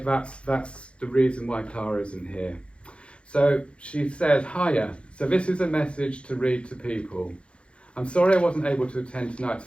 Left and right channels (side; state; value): right; late; 0.059 ms